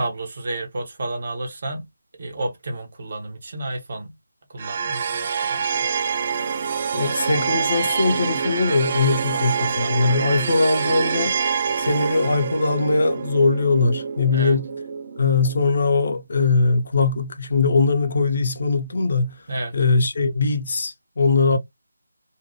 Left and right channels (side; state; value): both; inverted; correlation -0.73